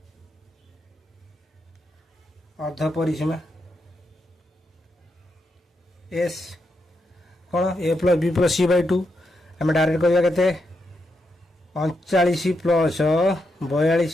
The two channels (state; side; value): normal; both; correlation 0.83